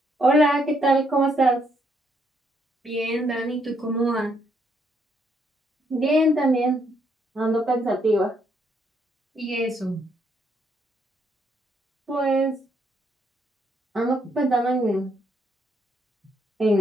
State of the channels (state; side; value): normal; both; correlation 0.73